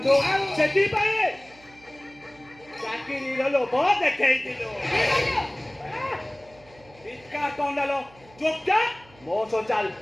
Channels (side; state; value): right; noise; hum, 26 dB below the sound